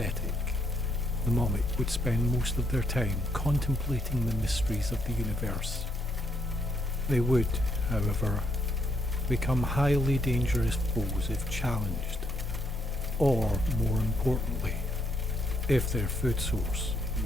the Momic would spend most of their time contemplating the mysteries of the universe. They would, however, become highly dangerous foes if challenged, or, more importantly, if their food source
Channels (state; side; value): normal; both; correlation 0.75